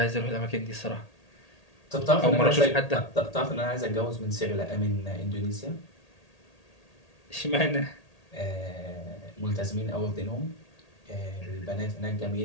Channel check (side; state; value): right; late; 1.8 ms